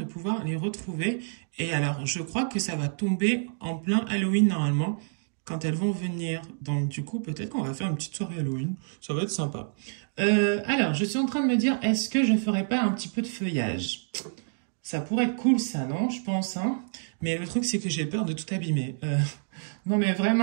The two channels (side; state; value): left; silent; digital silence